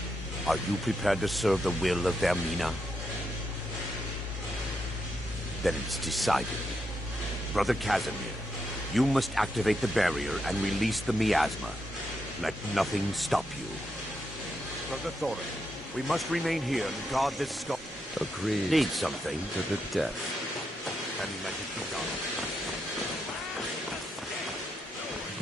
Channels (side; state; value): both; normal; correlation 0.82